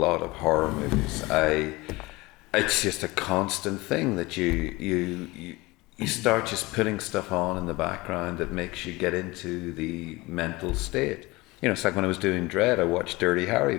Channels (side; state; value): right; quieter; 22.1 dB